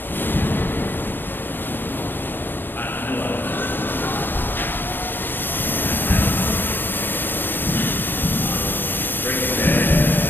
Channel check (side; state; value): right; late; 0.094 ms